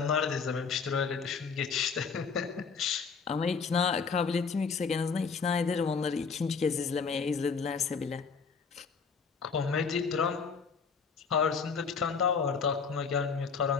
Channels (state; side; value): quieter; right; 5.5 dB